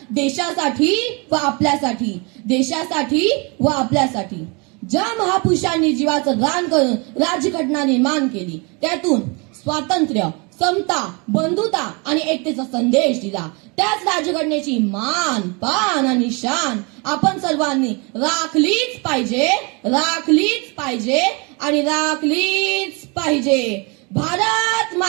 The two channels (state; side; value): quieter; left; 30.6 dB